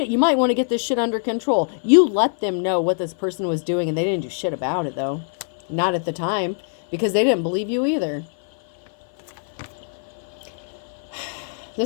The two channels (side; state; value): right; silent; 56 dB below the other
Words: You might want to get this shit under control. You let them know what this person was doing, and they didn't do shit about it though. Not at the time, because they didn't believe you either.